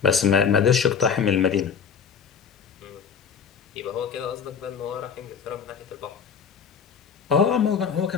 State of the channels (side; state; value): right; quieter; 6.7 dB